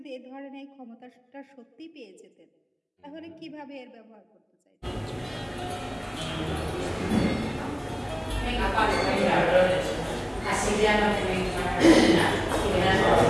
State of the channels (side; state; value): both; identical; correlation 1.00